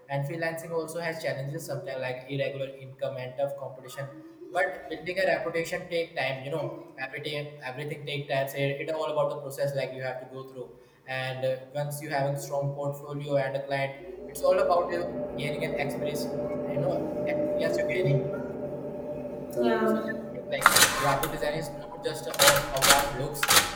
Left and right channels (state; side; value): identical; both; correlation 1.00